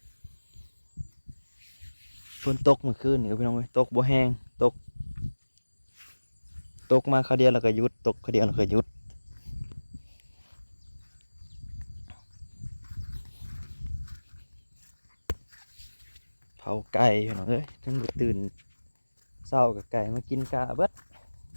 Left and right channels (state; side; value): inverted; both; correlation -1.00